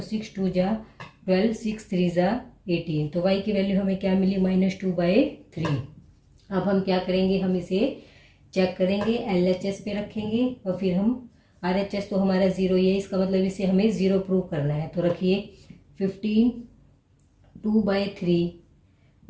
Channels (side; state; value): both; identical; correlation 1.00